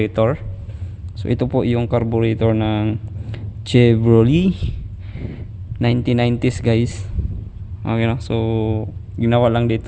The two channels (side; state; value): both; identical; correlation 1.00